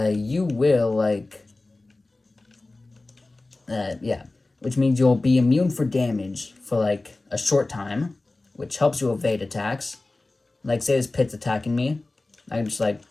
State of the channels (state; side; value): quieter; right; 3.1 dB